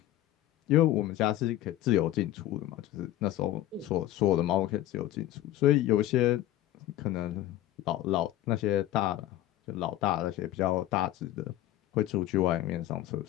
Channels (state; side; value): quieter; right; 14.2 dB